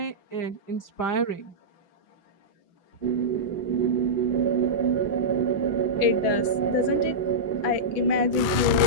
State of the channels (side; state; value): right; late; 6.0 ms